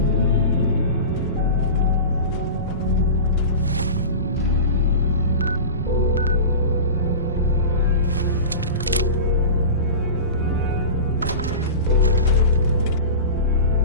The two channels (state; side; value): inverted; both; correlation -0.30